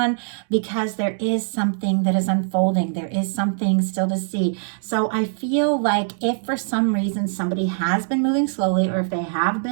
because there is something that is unfolding. There is something still to see. So I feel like if for some reason somebody has been moving slowly, or if they have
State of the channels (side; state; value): left; silent; digital silence